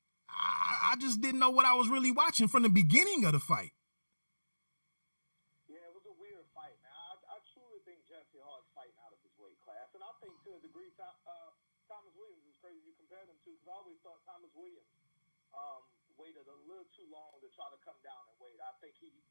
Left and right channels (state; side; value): inverted; both; correlation -1.00